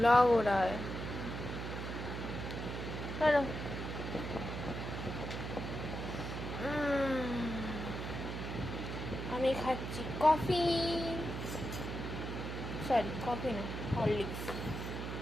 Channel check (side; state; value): right; noise; hum, 5 dB below the sound